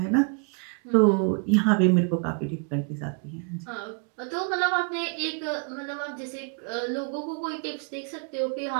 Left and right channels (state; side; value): quieter; left; 36.8 dB